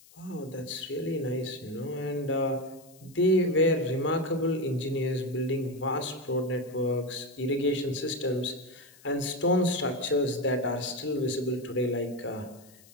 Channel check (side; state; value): left; noise; hiss, 25 dB below the sound